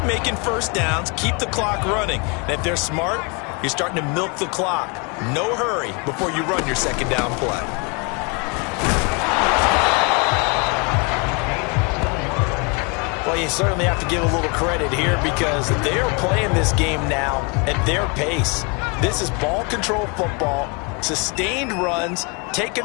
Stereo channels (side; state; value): right; quieter; 32.2 dB